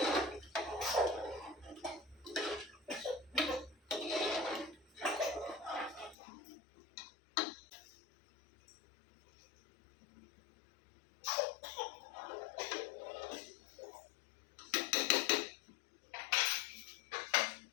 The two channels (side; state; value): right; drops out; at 6.2 s